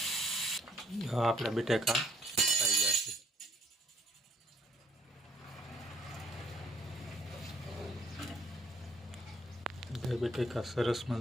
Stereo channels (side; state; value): both; normal; correlation 0.64